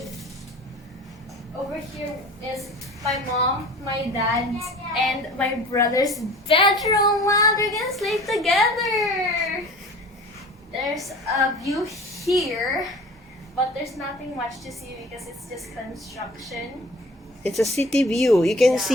Over here is my mom, my dad, and my brother's bedroom. Wow, they're gonna sleep together. There's a view here, but there's nothing much to see because it's just construction. It's a city view. You can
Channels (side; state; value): both; normal; correlation 0.43